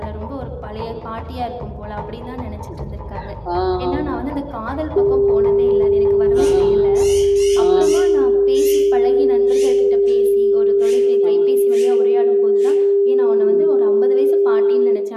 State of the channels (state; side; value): identical; both; correlation 1.00